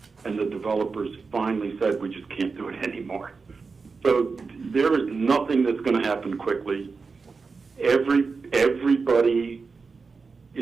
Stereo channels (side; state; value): left; quieter; 4.6 dB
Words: and the developers finally said, we just can't do it anymore. So there is nothing that's going to happen quickly. Everybody,